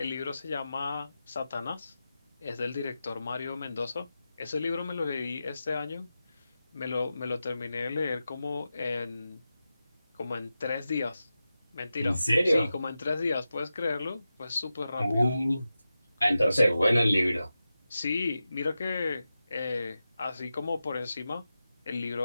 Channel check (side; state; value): both; inverted; correlation -0.92